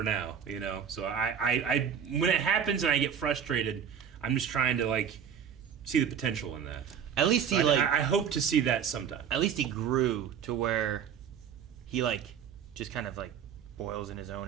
now, you know. So I when it happens and I get frustrated, I'm just trying to like see the potential in that. At least he I hope to see that sometime. At least he grew to where he like just kind of like boils in his own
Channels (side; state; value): left; quieter; 8.1 dB